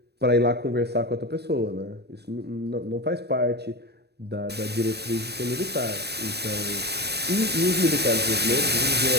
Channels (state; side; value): late; left; 0.48 ms